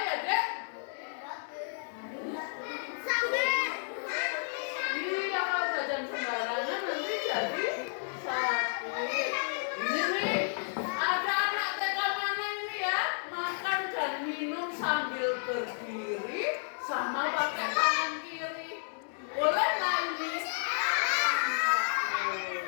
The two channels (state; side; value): silent; right; digital silence